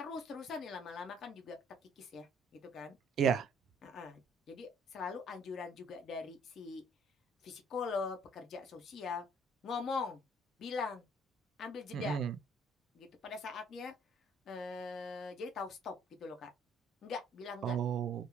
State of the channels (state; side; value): normal; both; correlation 0.60